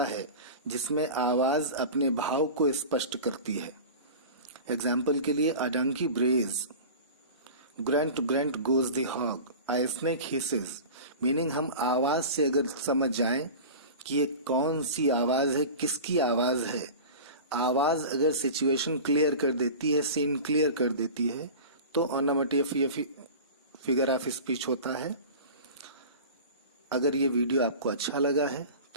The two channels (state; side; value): inverted; both; correlation -0.34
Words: है जिसमें आवाज अपने भाव को स्पष्ट करती है। एग्जाम्पल के लिए, a donkey brays, grunt grunt goes the hog, a snake hisses। Meaning हम आवाज से अगर समझ जाएं कि ये कौन सी आवाज है, किसकी आवाज है, आवाज अगर सिचुएशन क्लियर कर देती है, सीन क्लियर कर देती है, तो ओनोमेटोपोएia फिगर ऑफ स्पीच होता है। अगर ये वीडियो आपको अच्छा लगा है